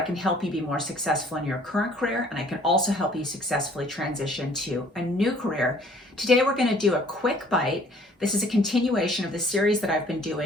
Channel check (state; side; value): normal; both; correlation 0.56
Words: can help you be more successful in your current career, and I can also help you successfully transition to a new career. Today we're going to do a quick bite. This is a continuation of the series that I've been